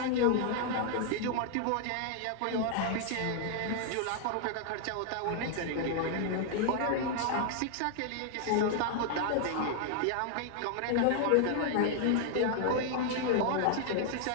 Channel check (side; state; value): both; different; correlation 0.00